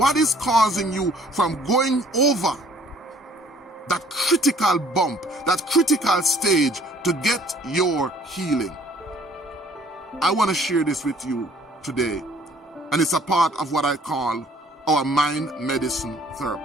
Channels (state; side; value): normal; both; correlation 0.57